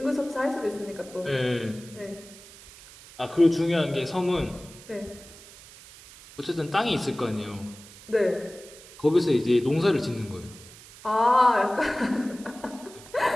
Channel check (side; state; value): right; noise; hiss, 19 dB below the sound